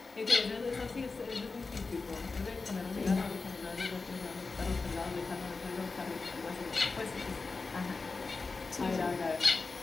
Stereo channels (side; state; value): right; quieter; 4.1 dB